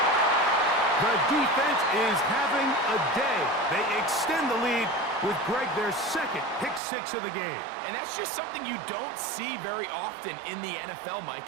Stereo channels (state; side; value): drops out; left; at 6.8 s